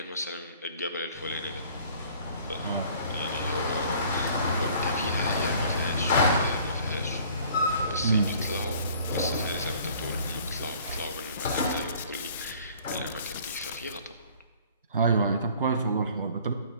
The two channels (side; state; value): both; inverted; correlation -0.53